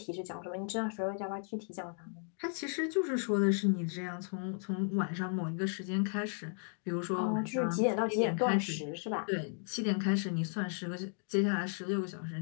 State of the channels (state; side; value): silent; right; 55 dB below the other